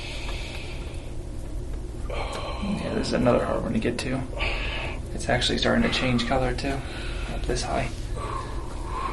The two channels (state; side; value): identical; both; correlation 1.00